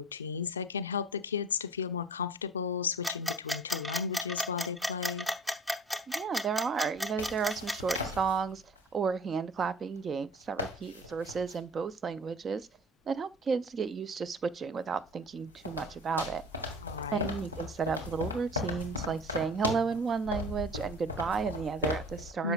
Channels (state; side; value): normal; both; correlation 0.43